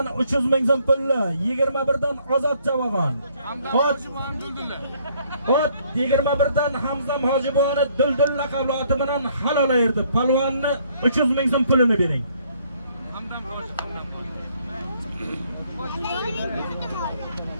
300 ming so'm pulni 21 dan Ozod Javog'on. Ot 21 dan Hamzam Hojiboni Duldul laqabli oti bilan halol ayirdi. Palvonni 300 ming so'm pulini bering.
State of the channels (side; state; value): both; inverted; correlation -0.65